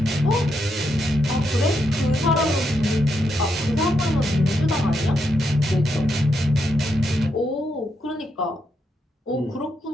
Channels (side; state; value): both; normal; correlation 0.81